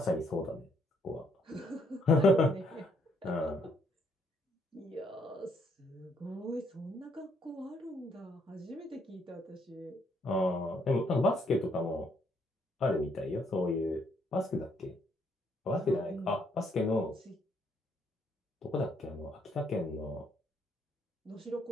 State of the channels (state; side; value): normal; both; correlation 0.71